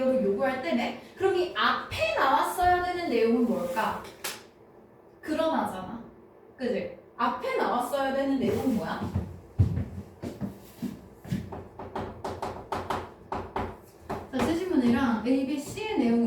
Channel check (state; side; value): identical; both; correlation 1.00